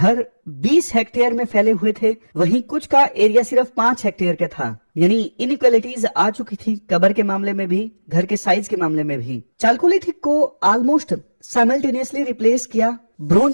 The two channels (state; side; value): inverted; both; correlation -1.00